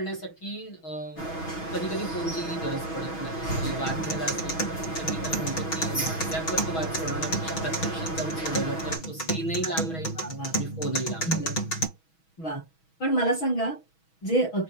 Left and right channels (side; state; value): right; late; 6.2 ms